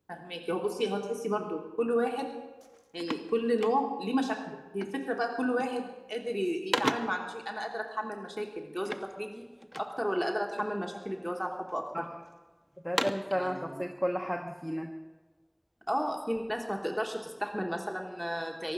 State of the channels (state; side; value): identical; both; correlation 1.00